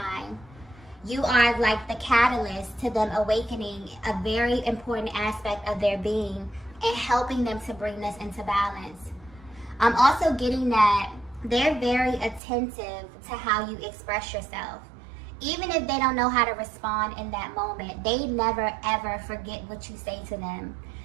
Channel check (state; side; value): drops out; left; at 12.4 s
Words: You are like the catalyst to them awakening a very important aspect of their being and helping them to bring this into balance. I'm also getting that they're very attentive to how you express yourself. Even if they don't know how to respond in that moment, they never ever forget what you say to them.